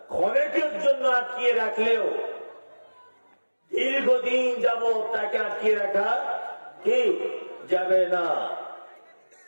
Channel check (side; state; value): both; inverted; correlation -1.00